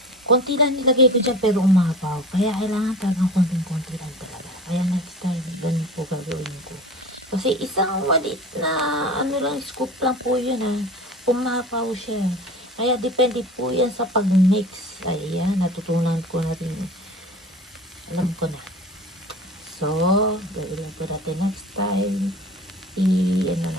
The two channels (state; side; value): normal; both; correlation 0.39